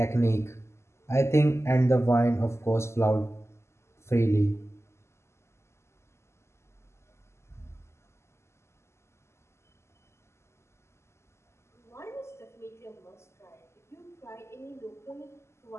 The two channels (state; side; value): late; right; 0.13 ms